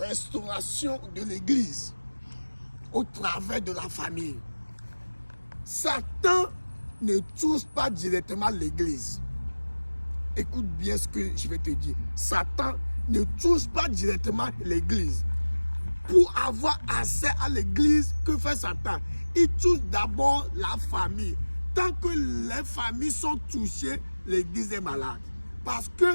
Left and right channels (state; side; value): inverted; both; correlation -1.00